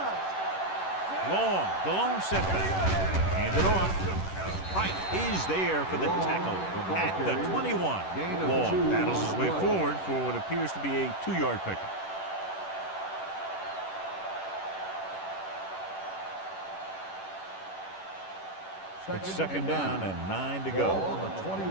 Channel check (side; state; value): right; late; 11 ms